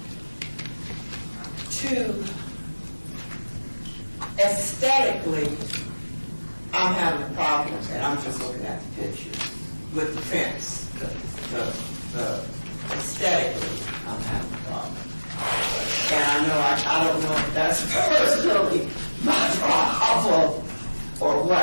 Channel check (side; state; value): both; inverted; correlation -1.00